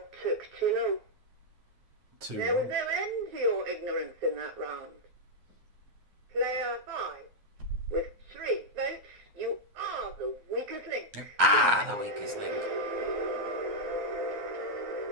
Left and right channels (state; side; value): late; left; 9.6 ms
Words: took too long. 2. There was no end to your ignorance in that round. Player 5. With 3 votes, you are the weakest link. Ah, the weakest link.